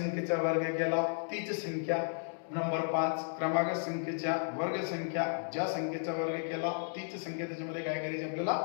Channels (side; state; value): right; silent; digital silence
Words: वर्ग केला तीच संख्या. नंबर 5 क्रमागत संख्येच्या वर्ग संख्या ज्या संख्येचा वर्ग केला तीच संख्या त्याच्यामध्ये काय करायची आपल्याला